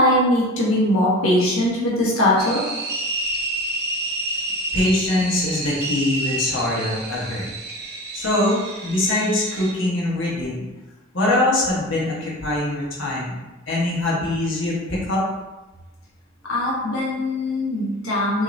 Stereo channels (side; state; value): both; normal; correlation 0.35